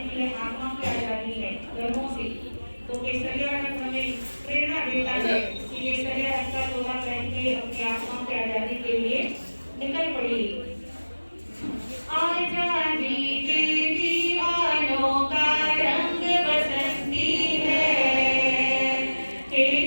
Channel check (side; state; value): both; inverted; correlation -1.00